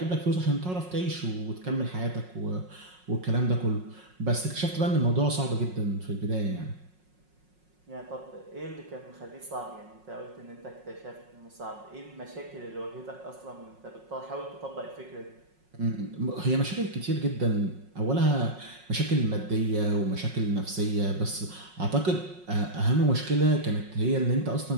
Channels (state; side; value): late; left; 5.5 ms